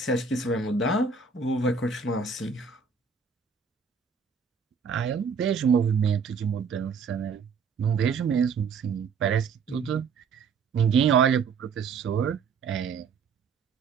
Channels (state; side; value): quieter; left; 5.6 dB